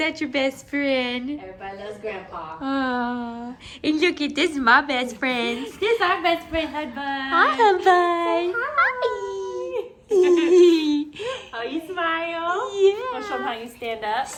your best friend? Everybody loves Grandpa. Oh, and look at this is my best friend. This is our best friend, Hudbud. Hi, Hudbud. Oh, you smile? Yeah. Want to show them how you stand up?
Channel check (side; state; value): both; identical; correlation 1.00